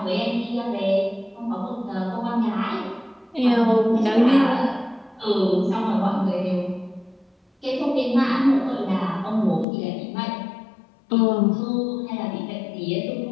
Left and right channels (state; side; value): drops out; right; at 9.7 s